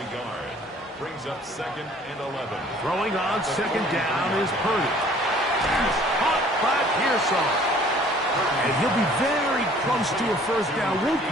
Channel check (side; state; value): both; normal; correlation 0.54